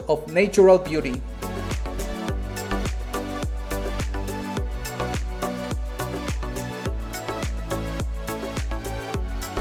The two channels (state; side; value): identical; both; correlation 1.00